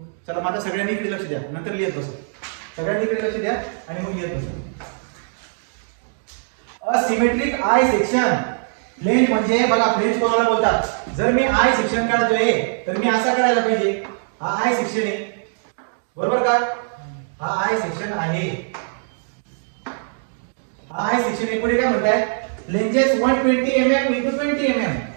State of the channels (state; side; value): silent; left; digital silence